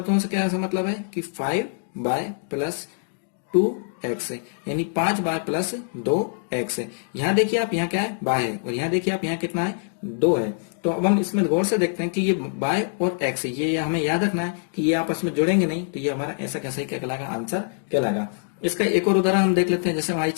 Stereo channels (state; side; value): silent; right; digital silence